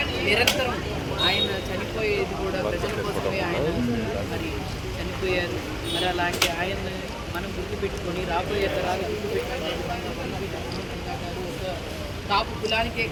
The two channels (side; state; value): both; identical; correlation 1.00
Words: నిరంతరం ఆయన చనిపోయేది కూడా ప్రజల కోసమే. ఆయన మరి చనిపోయారు. మరి అలాంటి ఆయన మనం గుర్తుపెట్టుకొని రాబోయే తరాలు గుర్తుపెట్టుకునే విధంగా వంగవీటి మోహన్ రంగా గారు ఒక కాపు కులానికే